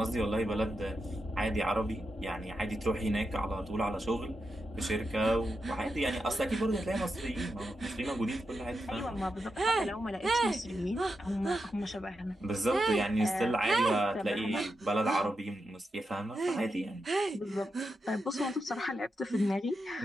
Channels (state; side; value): normal; both; correlation 0.87